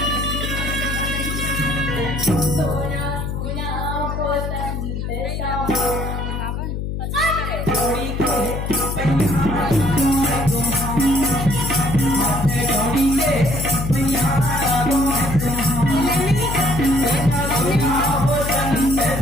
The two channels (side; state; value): left; noise; hum, 4 dB below the sound